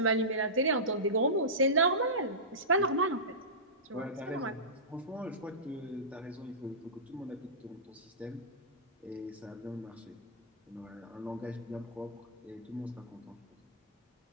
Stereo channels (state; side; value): normal; both; correlation -0.20